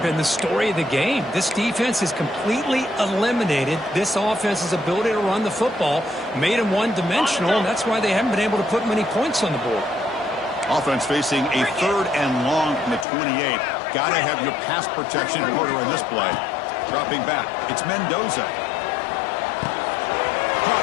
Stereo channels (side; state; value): right; drops out; at 13.1 s